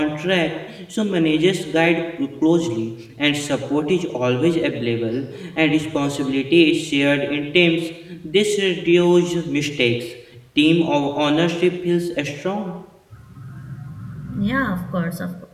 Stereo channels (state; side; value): identical; both; correlation 1.00